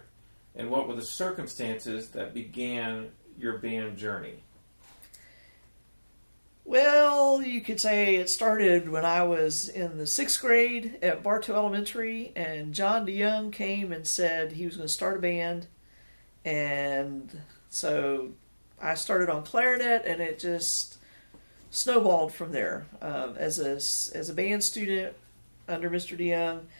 and what were the circumstances that began your band journey? Well, you could say it started when I was in the 6th grade at Bartow Elementary, and Jon Eckman came and said he was going to start a band, and so I started on clarinet, and it just snowballed from there. As a band student under Mr. DeYoung,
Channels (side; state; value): both; inverted; correlation -1.00